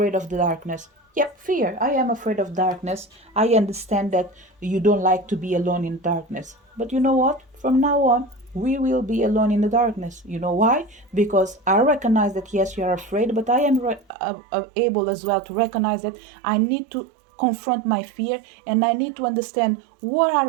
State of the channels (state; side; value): drops out; left; at 14.1 s